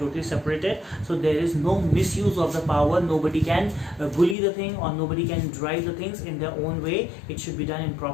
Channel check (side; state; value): right; drops out; at 4.4 s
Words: separated, so there is no misuse of the power. Nobody can bully the thing or nobody can drive the things in their own way. It should be done in